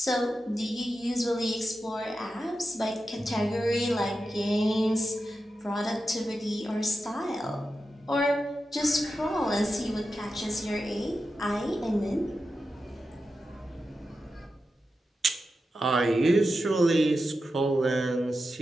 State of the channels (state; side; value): normal; both; correlation 0.90